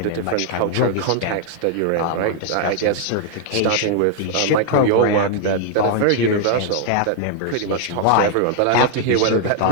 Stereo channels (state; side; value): different; both; correlation 0.00